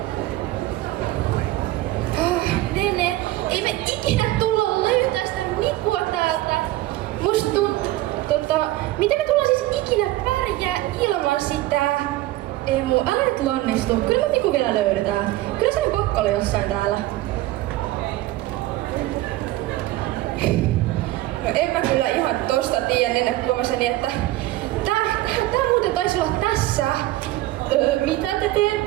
Nene, ei me ikinä tulla löytää sitä Mikua täältä. Musta miten me tullaan siis ikinä pärjää ilman sitä? Ei mun äänet lannistu. Kyllä me Miku vielä löydetään. Kyllä se on pakko olla jossain täällä. No en mä kyllä ihan tosta tiedä, ennen huomaseni, että tää muuten taisi olla tässä. Mitä te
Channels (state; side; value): quieter; left; 16.9 dB